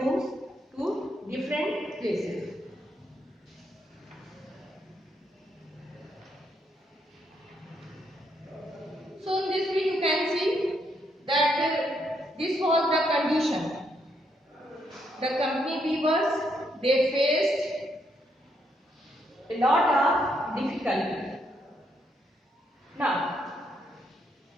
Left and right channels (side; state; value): both; normal; correlation 0.76